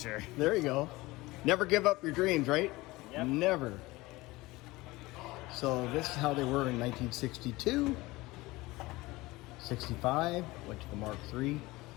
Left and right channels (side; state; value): right; quieter; 20.6 dB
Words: There you go. Never give up your dreams, right? Yep. Never. So this is how they were in 1962, 65, went to the Mark III.